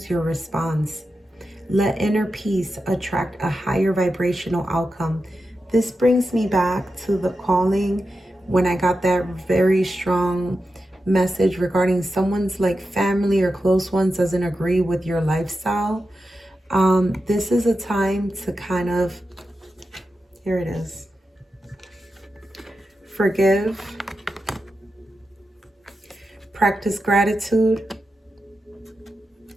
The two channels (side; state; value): both; normal; correlation 0.90